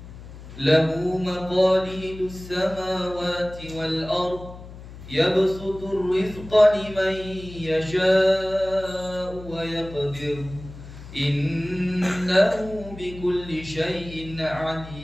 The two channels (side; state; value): left; noise; hum, 15 dB below the sound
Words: له مقاليد السماوات والأرض يبسط الرزق لمن يشاء ويقدر إنه بكل شيء